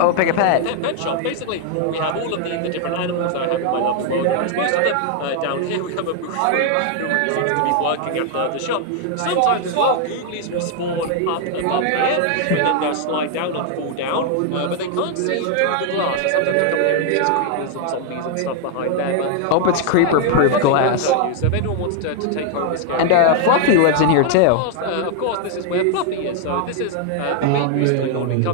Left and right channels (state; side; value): different; both; correlation 0.00